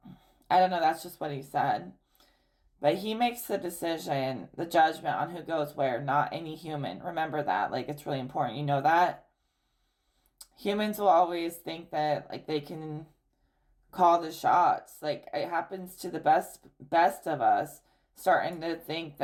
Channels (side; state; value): both; identical; correlation 1.00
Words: I don't know, that's just what He said. But He makes the decision, the judgment on who goes where, not any human. Remember that. Like, it's really important. You know that? Humans will always think that, like, they can call the shots. Like, it happens to the best of us, starting to think